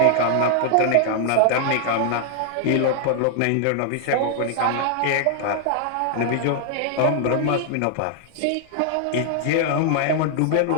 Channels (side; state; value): both; different; correlation 0.00